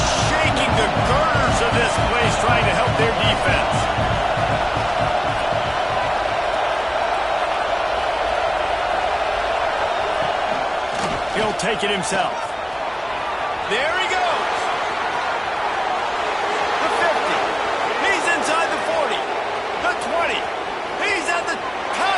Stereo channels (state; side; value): identical; both; correlation 1.00